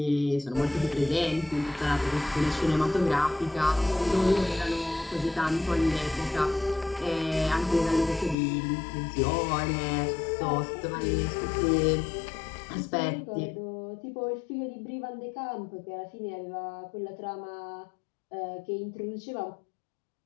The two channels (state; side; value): drops out; right; at 8.3 s